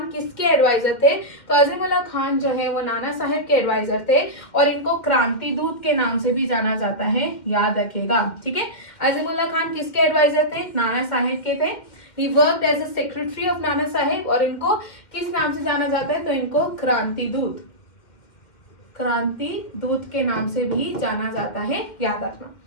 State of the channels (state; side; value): late; right; 2.1 ms